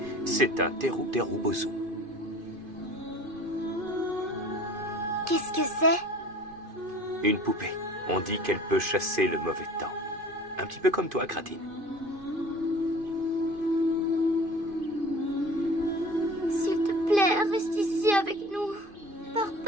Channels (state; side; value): late; left; 2.5 ms